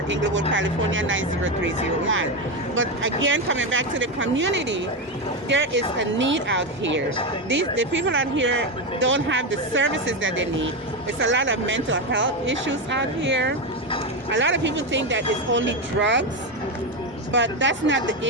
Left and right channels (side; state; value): both; normal; correlation 0.12